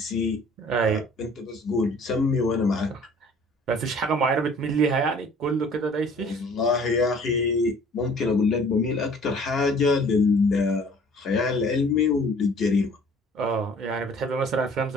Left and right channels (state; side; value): normal; both; correlation 0.52